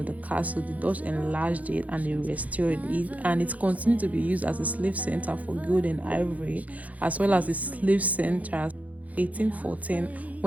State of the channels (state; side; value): late; left; 0.071 ms